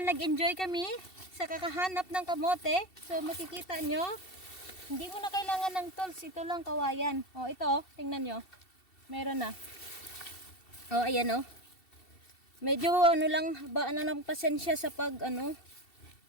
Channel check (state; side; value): late; right; 2.7 ms